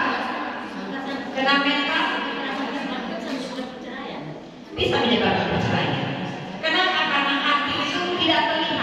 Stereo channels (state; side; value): identical; both; correlation 1.00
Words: Kena mental bisa menyebabkan perceraian. Kenapa? Karena hati itu tidak